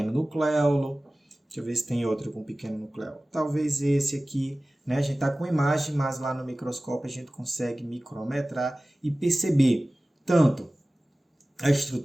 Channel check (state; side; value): normal; both; correlation 0.97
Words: nucléolo, deixa eu ver se tem outro com pequeno nucléolo. Talvez esse aqui, né? A gente está com imagem, mas lá no microscópio a gente consegue micrometrar e perceber tanto a